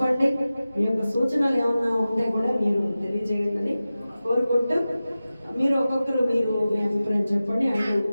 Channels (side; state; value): both; inverted; correlation -0.95